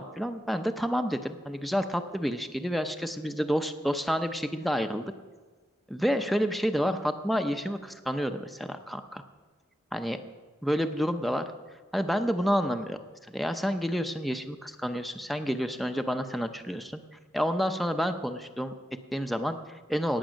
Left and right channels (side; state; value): both; normal; correlation 0.89